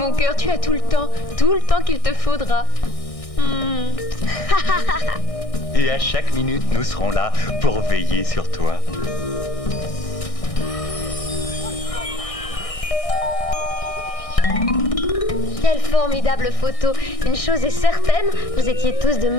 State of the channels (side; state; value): right; late; 1.6 ms